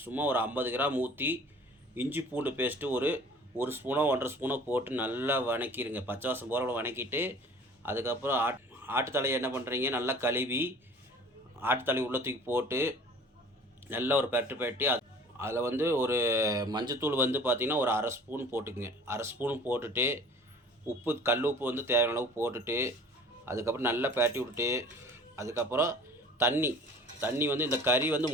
சும்மா ஒரு 50 கிராம் ஊற்றி இஞ்சி பூண்டு பேஸ்ட்டு ஒரு ஸ்பூனோ 1.5 ஸ்பூனோ போட்டு நல்லா வணக்கிடுங்க. பச்சை வாசம் போகிற வணக்கிட்டு அதுக்கப்புறம் ஆட்டுத்தலையை என்ன பண்ணுறீங்க, நல்லா கழுவி ஆட்டுத்தலை உள்ள தூக்கி போட்டு நல்லா ஒரு பெரட்டி அதில் ஒரு மஞ்சத்தூள் பார்த்திங்கன்னா ஒரு 1/2 ஸ்பூன் போட்டுக்குங்க. 1/2 ஸ்பூன் போட்டுட்டு உப்பு, கல் உப்பு தேவையான அளவு போட்டுட்டு அதுக்கப்புறம் நல்லா பெரட்டி விட்டுட்டு அதுக்கப்புறம் தண்ணி இந்த கறி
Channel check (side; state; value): both; normal; correlation 0.47